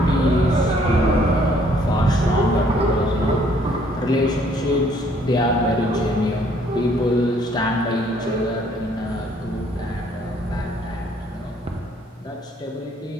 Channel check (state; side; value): normal; both; correlation 0.63